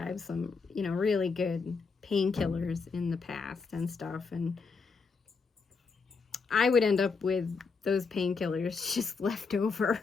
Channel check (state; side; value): quieter; right; 4.8 dB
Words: some, you know, really good painkillers in the past and stuff. And I would end up with those painkillers just left over.